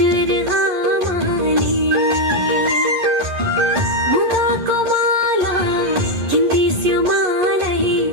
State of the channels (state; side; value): late; left; 11 ms